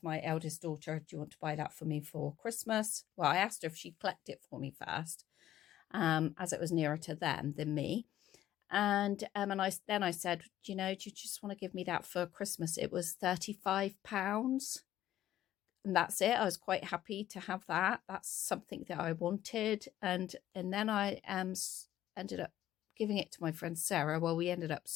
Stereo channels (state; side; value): quieter; right; 12.9 dB